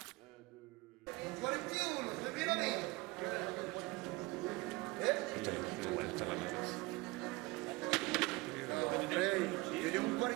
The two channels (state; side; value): quieter; left; 22.5 dB